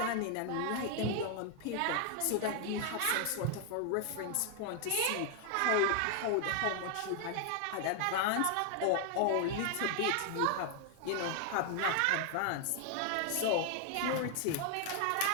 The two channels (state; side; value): different; both; correlation 0.00